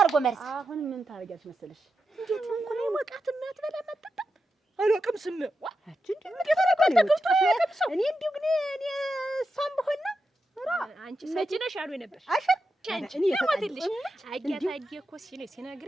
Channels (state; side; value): normal; both; correlation 0.88